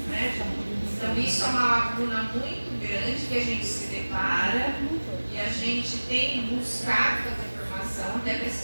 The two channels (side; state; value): both; inverted; correlation -1.00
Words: né? Então, isso é uma lacuna muito grande que a gente se depara e a gente tem buscado fazer formação até para